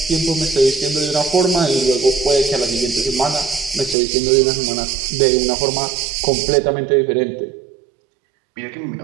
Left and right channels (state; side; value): drops out; left; at 4.0 s